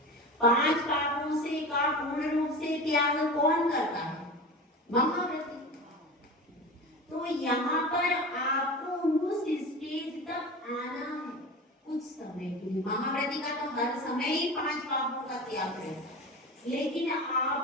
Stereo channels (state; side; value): normal; both; correlation 0.31